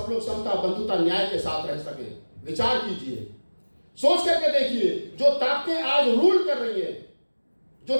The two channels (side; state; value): both; inverted; correlation -1.00